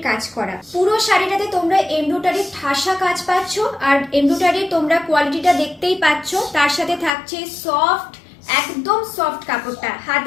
কাজ করা। পুরো শাড়িটাতে তোমরা এমব্রয়ডারির ঠাসা কাজ পাচ্ছ, আর এমব্রয়ডারির তোমরা কোয়ালিটিটা দেখতেই পাচ্ছ। তার সাথে থাকছে সফট, একদম সফট কাপড়টা,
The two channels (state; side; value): drops out; right; at 7.1 s